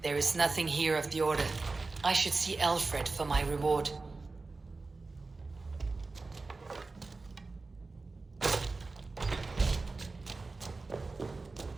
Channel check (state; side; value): quieter; left; 3.7 dB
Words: There is nothing here of the Order. I should see Aelfred for my reward.